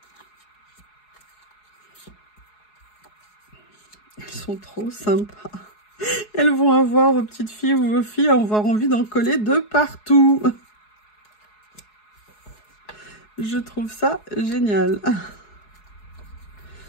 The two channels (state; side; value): late; right; 4.7 ms